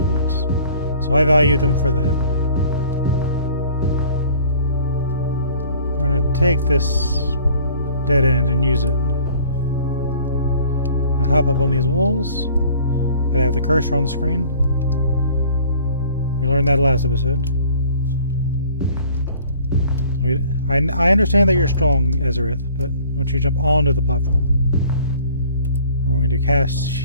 So I value them for that. We're going to take this dead end and use it. I'll hop up on these walls. I have the cursor on the screen. We learned that last episode. I understand that you're strong, Ezerith, but I want you to jump onto the platform. We're going to cast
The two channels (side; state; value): both; inverted; correlation -0.52